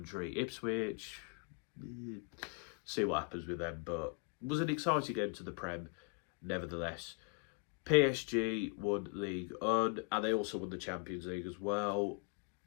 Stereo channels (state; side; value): quieter; right; 37.1 dB